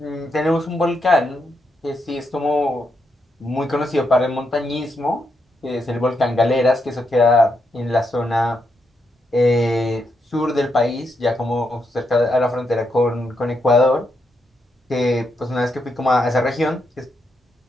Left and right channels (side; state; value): both; normal; correlation 0.81